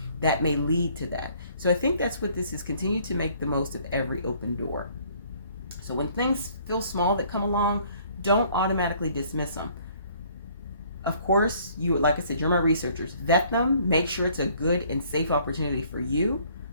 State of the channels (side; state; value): both; inverted; correlation -0.60